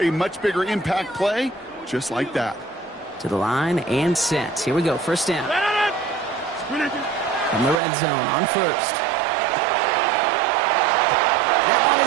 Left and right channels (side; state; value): left; drops out; at 7.8 s